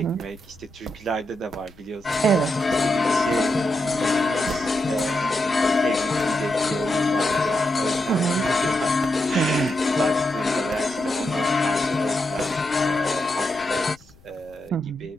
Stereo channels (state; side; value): noise; left; rumble, 26 dB below the sound